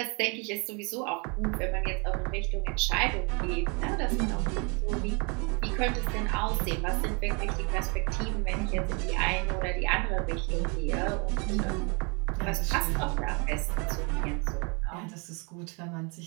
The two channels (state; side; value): quieter; left; 32.2 dB